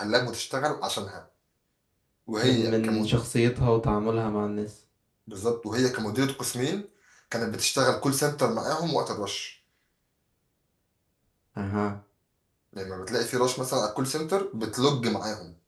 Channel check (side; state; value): both; identical; correlation 1.00